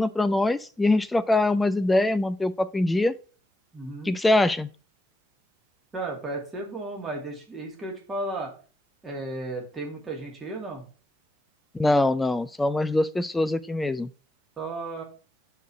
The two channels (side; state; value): both; normal; correlation 0.87